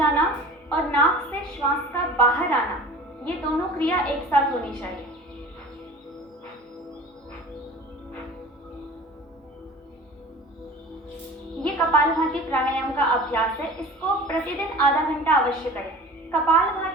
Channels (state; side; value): normal; both; correlation 0.41